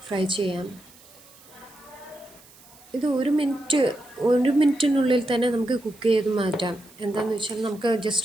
ഫ്രൈ ചെയ്യാം. ഇത് 1 മിനിറ്റിനുള്ളിൽ തന്നെ നമുക്ക് കുക്ക് ചെയ്ത് മാറ്റാം. എന്താണെന്ന് വെച്ചാൽ നമുക്ക്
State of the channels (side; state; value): right; noise; hiss, 24 dB below the sound